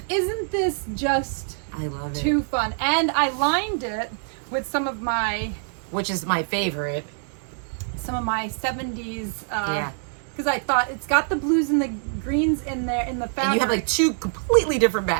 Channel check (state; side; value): silent; left; 62 dB below the other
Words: Isn't this just I love it. Too fun. And I lined it with some of my... Which is my favorite. Some of my 70s... yeah. Because I thought it's got the blues and the greens in there in the fabric. And you have like 2 completely different